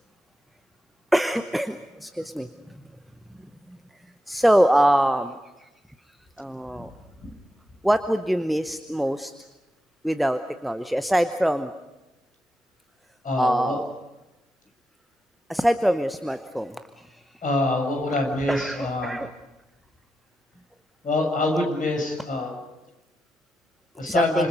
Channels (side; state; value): both; normal; correlation 0.88